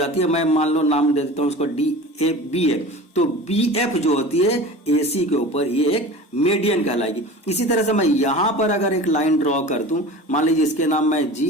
है, मैं मान लो नाम दे देता हूं उसको DAB है, तो BF जो होती है AC के ऊपर, ये एक मीडियन कहलाएगी। इसी तरह से मैं यहां पर अगर एक लाइन ड्रॉ कर दूं, मान लीजिए इसके नाम मैं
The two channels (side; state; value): both; normal; correlation 0.37